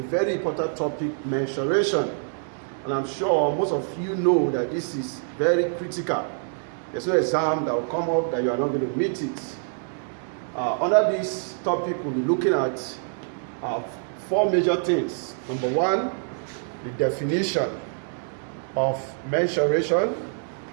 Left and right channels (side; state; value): left; silent; digital silence